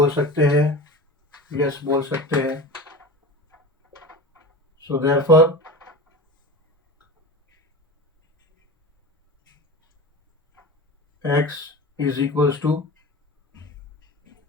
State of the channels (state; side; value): normal; both; correlation 0.31